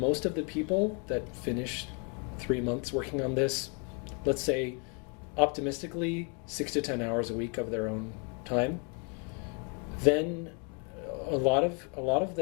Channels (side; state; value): right; quieter; 36.6 dB